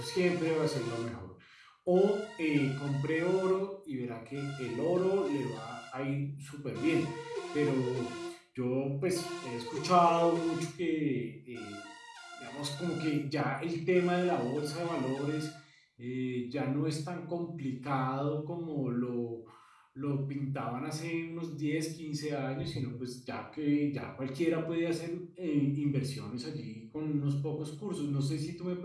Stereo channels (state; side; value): identical; both; correlation 1.00